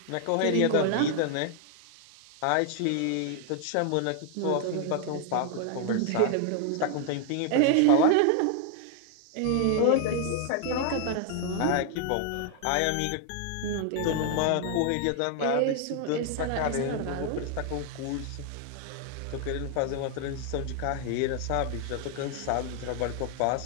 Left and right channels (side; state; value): both; different; correlation 0.00